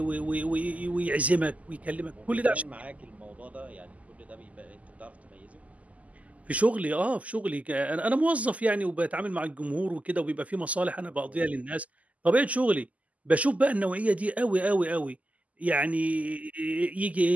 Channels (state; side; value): late; left; 0.072 ms